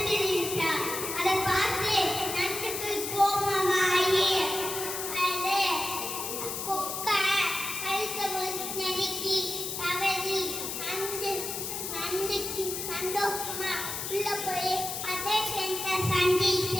இருந்துச்சாம். அதை பார்த்து நண்டுக்கு கோபமாயி அது கொக்கை கழுத்தை நெருக்கி தவறி நண்டுக்கு சந்தோஷமா உள்ள போய் அதே ஃப்ரெண்ட்ஸை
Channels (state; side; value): noise; left; hiss, 4 dB below the sound